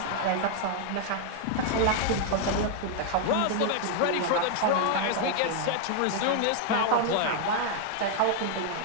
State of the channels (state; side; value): different; both; correlation 0.00